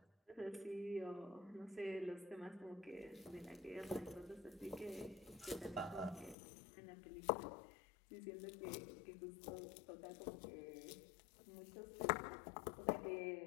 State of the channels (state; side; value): drops out; right; at 6.4 s